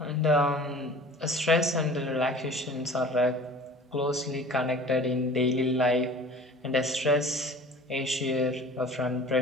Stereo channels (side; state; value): both; normal; correlation 0.44